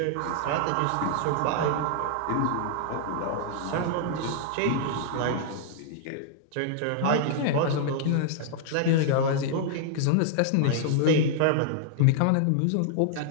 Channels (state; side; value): different; both; correlation -0.01